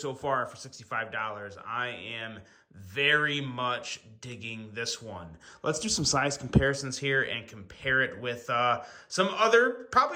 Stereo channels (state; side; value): identical; both; correlation 1.00